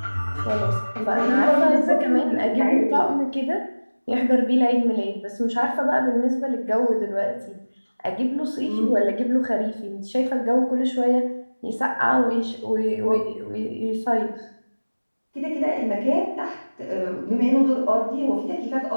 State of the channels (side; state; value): both; inverted; correlation -1.00